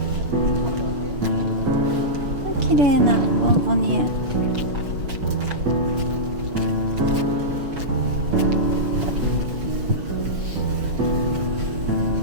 綺麗なボンボニエ。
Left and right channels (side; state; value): left; late; 6.6 ms